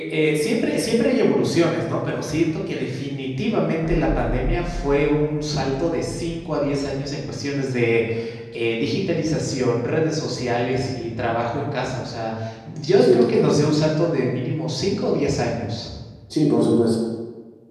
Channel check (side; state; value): both; identical; correlation 1.00